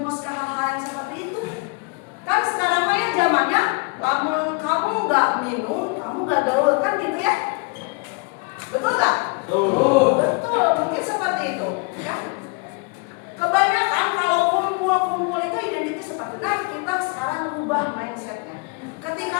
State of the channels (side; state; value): right; quieter; 31.2 dB